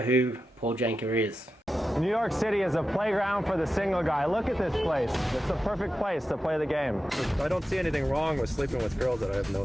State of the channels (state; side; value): normal; both; correlation 0.91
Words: Paul Janka is. New York City is a playground for the single guy. Look at this place. It's the perfect place to play the game. I don't see anything wrong with sleeping with girls that I have no